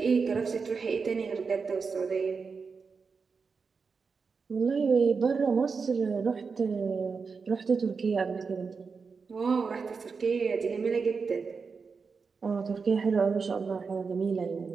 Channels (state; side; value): quieter; left; 5.1 dB